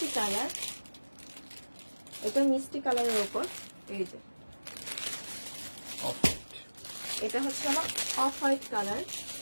কালার, এটা মিষ্টি কালারের উপর এই যে এটা হচ্ছে আমার অফ হোয়াইট কালার।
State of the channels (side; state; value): both; inverted; correlation -1.00